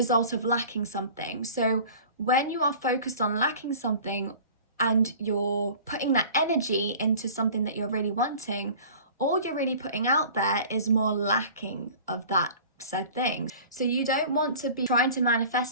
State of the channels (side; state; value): both; inverted; correlation -0.43